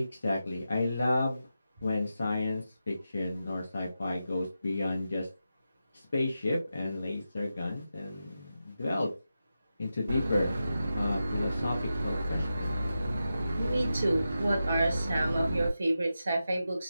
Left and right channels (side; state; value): both; inverted; correlation -0.90